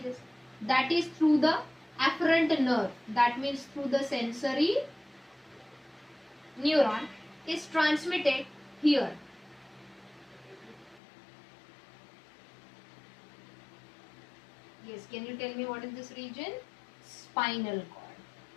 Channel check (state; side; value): drops out; right; at 11.0 s